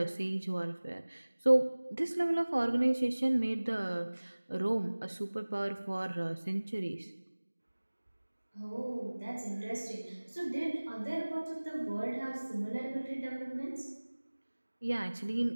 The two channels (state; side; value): inverted; both; correlation -1.00